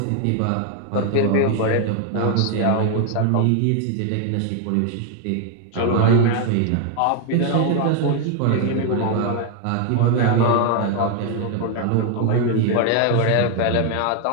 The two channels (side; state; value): both; different; correlation 0.01